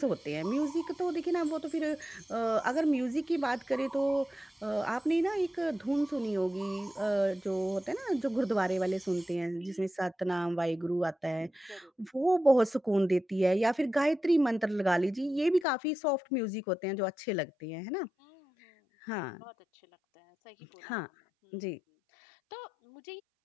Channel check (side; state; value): right; drops out; at 15.7 s